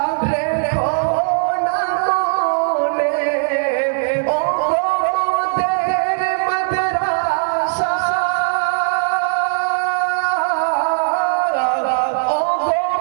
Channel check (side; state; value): left; silent; 61 dB below the other